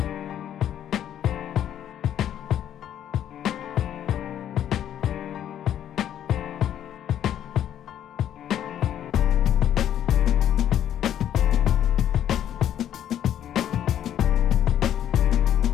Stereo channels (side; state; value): right; quieter; 10.5 dB